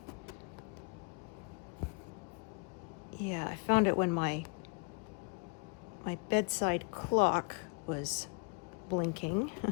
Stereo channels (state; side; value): quieter; right; 33.8 dB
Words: yeah, I found it when my bedside clock was blinking,